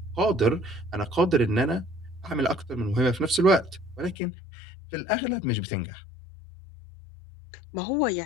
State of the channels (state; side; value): drops out; right; at 4.2 s